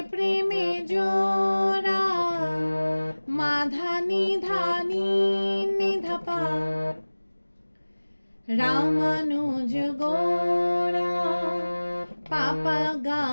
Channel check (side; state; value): both; inverted; correlation -1.00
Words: প্রেমে জোড়া, মাধা নিধা নিধা। রামানুজ গোরা পাপা